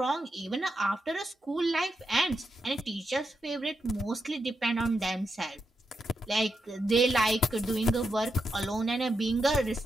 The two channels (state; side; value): normal; both; correlation 0.85